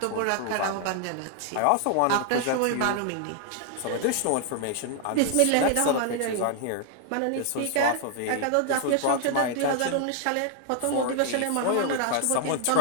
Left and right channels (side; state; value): both; different; correlation 0.00